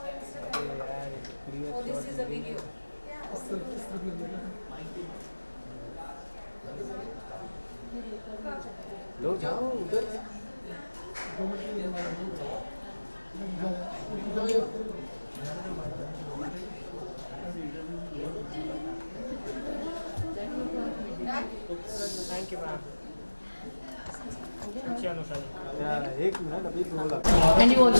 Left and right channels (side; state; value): both; inverted; correlation -1.00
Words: This is a video. लो जाओ उधर थैंक यू मैम अच्छी अनुषा जी एक मिनट अभी बोला And you